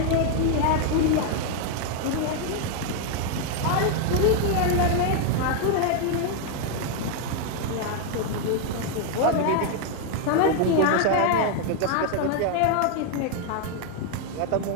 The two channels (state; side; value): different; both; correlation 0.00